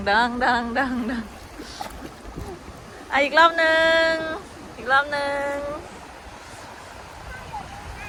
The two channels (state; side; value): identical; both; correlation 1.00